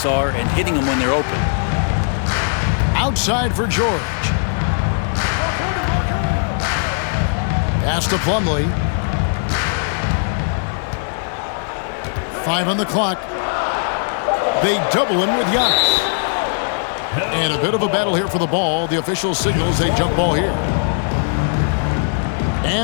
are and hitting them when they're open. Outside for George. Pass to Plumlee. 5 on the clock. They double him with Giannis. And a bit of a battle here for the ball. The official signals a jump ball here.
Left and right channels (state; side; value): silent; right; digital silence